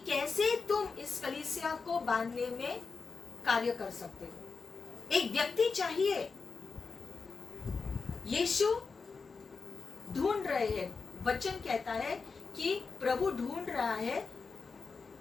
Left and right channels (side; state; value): right; quieter; 4.7 dB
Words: कैसे तुम इस कलीसिया को बांधने में कार्य कर सकते हो। एक व्यक्ति चाहिए। यीशु ढूंढ रहे हैं, वचन कहता है कि प्रभु ढूंढ रहा है